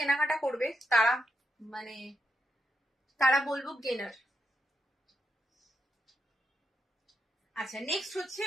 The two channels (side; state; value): both; normal; correlation 0.82